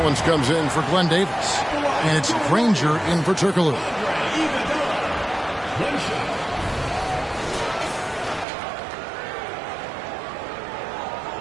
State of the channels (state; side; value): drops out; left; at 8.5 s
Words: comes in for Glenn Davis. And it's Granger in for Turkoglu.